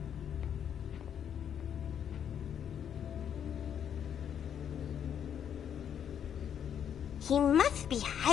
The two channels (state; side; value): quieter; right; 8.8 dB